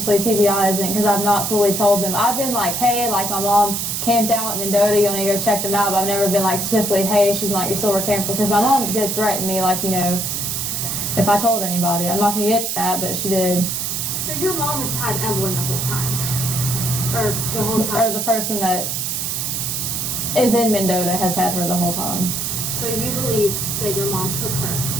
TBI isn't, because I've not fully told them. I've been like, hey, like my mom camped out at Mendota, you want to go check them out, but I've never been like specifically, hey, she's not your silver camper, because my mom did threaten me, like, you know, if I told anybody. I'm not going to get that, but she did. So your mom has had Evelyn the whole time? Or the whole time? Or the person that is in Mendota has had her the whole time. So you believe that your mom took her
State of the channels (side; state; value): right; noise; hiss, 2 dB below the sound